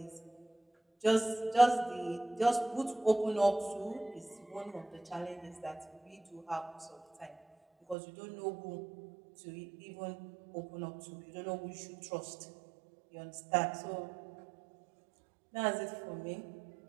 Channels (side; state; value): left; drops out; at 8.0 s